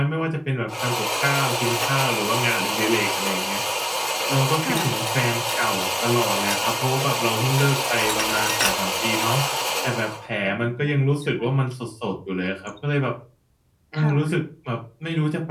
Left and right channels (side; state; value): both; identical; correlation 1.00